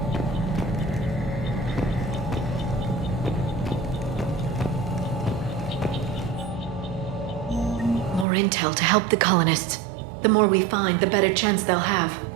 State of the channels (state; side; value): drops out; left; at 8.2 s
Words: More intel to help the colonists. The more we find, the better chance they'll have.